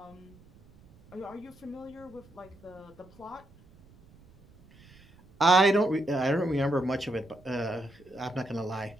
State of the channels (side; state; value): right; noise; rumble, 26 dB below the sound